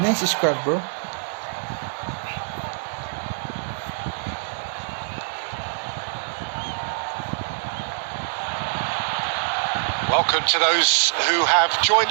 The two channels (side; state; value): left; silent; digital silence